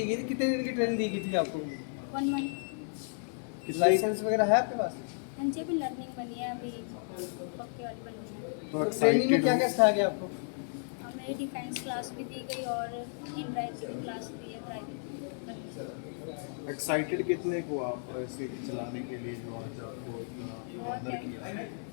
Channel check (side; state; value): right; silent; digital silence